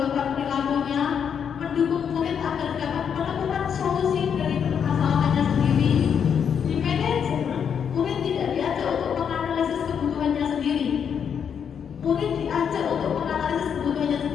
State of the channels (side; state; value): right; quieter; 7.6 dB